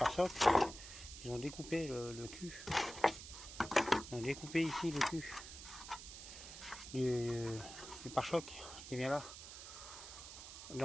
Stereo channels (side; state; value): right; noise; hiss, 12 dB below the sound